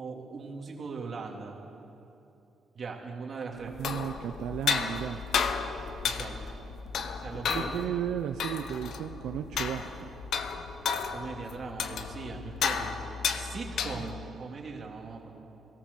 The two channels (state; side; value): normal; both; correlation 0.65